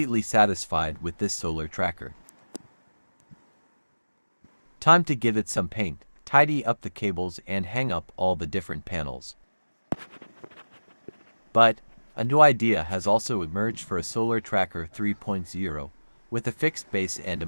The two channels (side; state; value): both; inverted; correlation -1.00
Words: satisfied with this solar tracker. Time to give it some paint, tidy up the cables and hang up all the different panels. But a new idea has also emerged for a solar tracker 3.0 with a fixed base and a